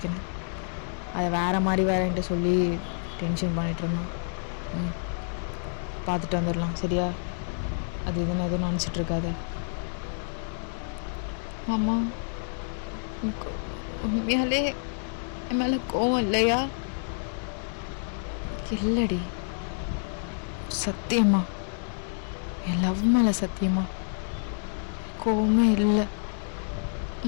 அதை வேறு மாதிரி வேறேன்ட்டு சொல்லி டென்ஷன் பண்ணிகிட்டு இருந்தான். பார்த்துட்டு வந்துடலாம். சரியா? அது இதுன்னு எதுவும் நினச்சிட்ருக்காத. ஆமாம், உண்மையாலே என் மேலே கோவம் இல்லையா? இல்லடி, சத்தியமா என் லவ் மேலே சத்தியமா கோவமே இல்லை.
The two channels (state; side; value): silent; right; digital silence